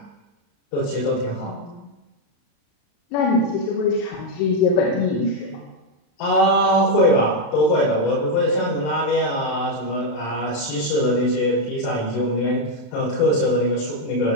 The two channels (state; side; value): late; right; 35 ms